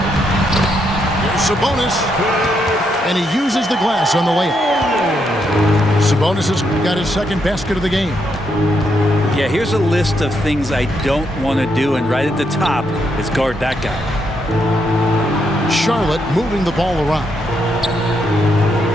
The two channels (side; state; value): both; normal; correlation 0.78